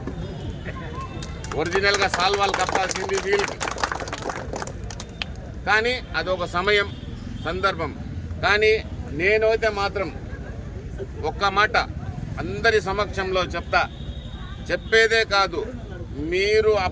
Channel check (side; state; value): both; identical; correlation 1.00